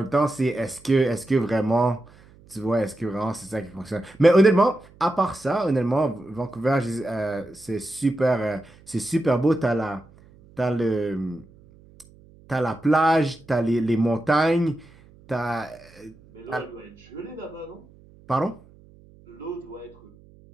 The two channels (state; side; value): noise; right; hum, 26 dB below the sound